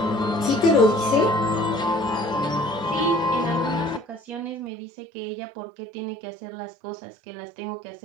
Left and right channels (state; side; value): drops out; left; at 4.7 s